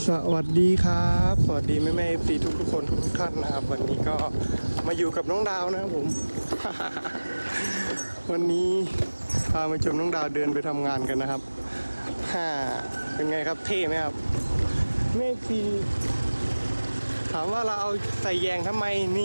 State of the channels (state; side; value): inverted; both; correlation -1.00